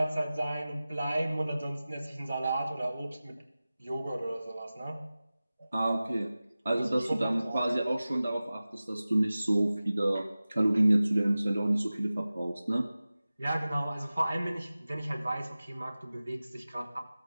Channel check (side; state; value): both; inverted; correlation -0.96